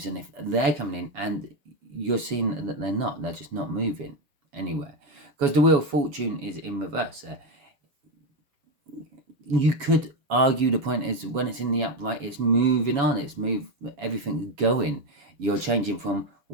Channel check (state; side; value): late; left; 7.1 ms